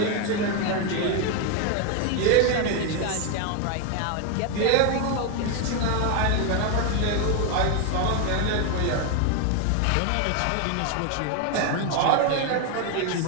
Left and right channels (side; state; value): both; different; correlation 0.01